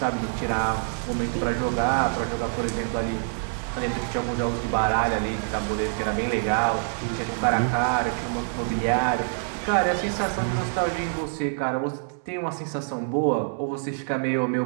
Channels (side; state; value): left; silent; digital silence